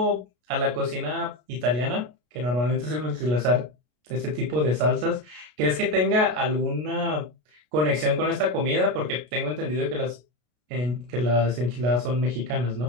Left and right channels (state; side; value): late; left; 33 ms